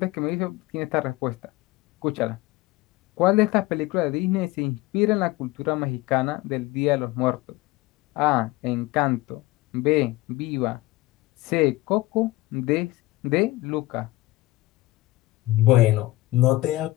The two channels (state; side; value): quieter; right; 19.1 dB